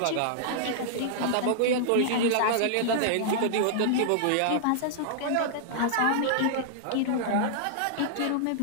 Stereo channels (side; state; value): both; different; correlation -0.01